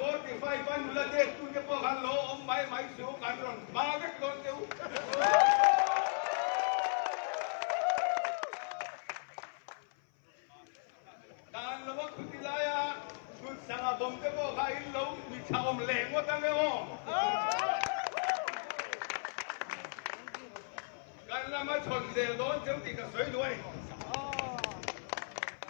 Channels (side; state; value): right; silent; 54 dB below the other